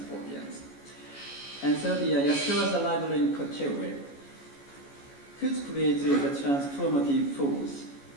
audience. And so the Yaskawa's arrival in Kočevju could create a transformative force,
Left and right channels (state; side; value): late; right; 14 ms